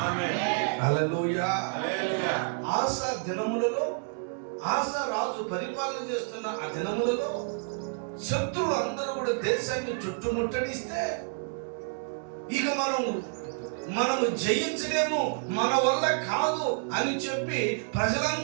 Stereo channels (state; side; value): silent; left; 58 dB below the other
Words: హల్లెలూయా. ఆసా దినములలో, ఆసా రాజు పరిపాలన చేస్తున్న ఆ దినములలో శత్రువులు అందరూ కూడా దేశాన్ని చుట్టుముట్టడిస్తే ఇక మనము జయించలేము, మన వల్ల కాదు అని చెప్పి